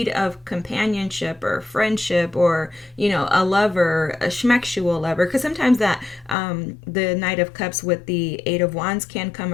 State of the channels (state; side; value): drops out; right; at 6.4 s